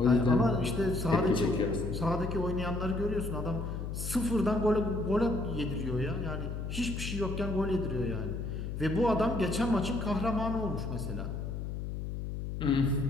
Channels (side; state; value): left; noise; hum, 5 dB below the sound